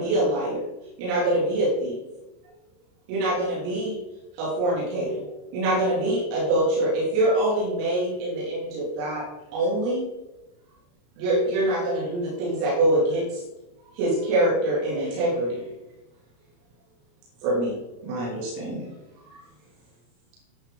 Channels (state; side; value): late; left; 34 ms